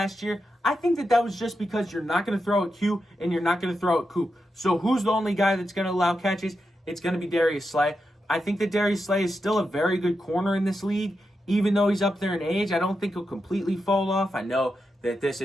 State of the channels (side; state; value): both; normal; correlation 0.87